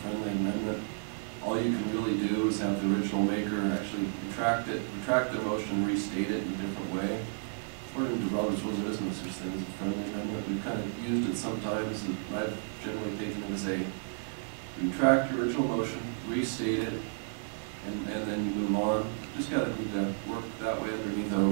friendly amendment. All you can really do is have the original maker actually retract the motion and restate it in a different way. According to Robert's rules, there is no such thing as a friendly amendment. We've kind of used it sometimes, and I've generally taken it as a retract your original motion, restate it, and then you move on. Just gotta need to work that way underneath our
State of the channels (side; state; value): left; silent; digital silence